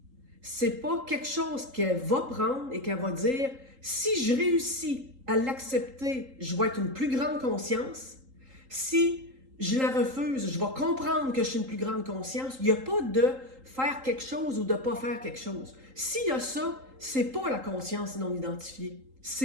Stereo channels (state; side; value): late; left; 3.8 ms